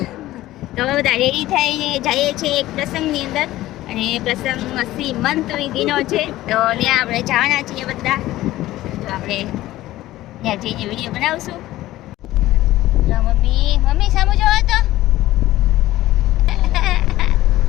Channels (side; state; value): right; quieter; 15.8 dB